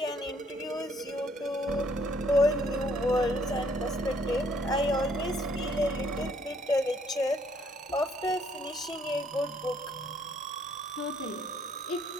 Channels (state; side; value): normal; both; correlation 0.66